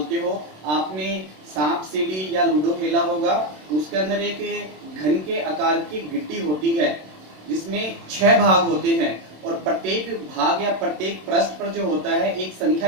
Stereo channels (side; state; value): left; late; 27 ms